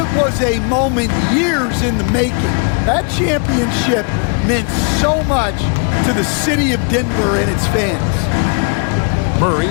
was a moment years in the making. That championship meant so much to the city of Denver and its fans. Murray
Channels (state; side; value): quieter; right; 39.0 dB